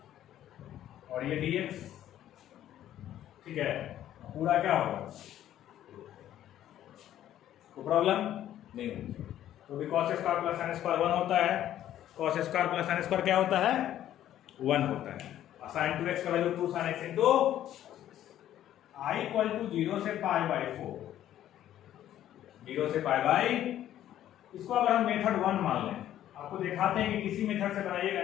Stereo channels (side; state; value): right; quieter; 12.0 dB